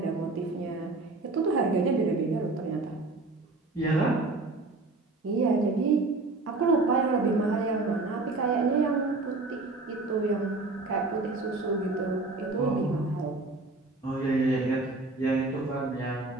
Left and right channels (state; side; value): quieter; left; 3.4 dB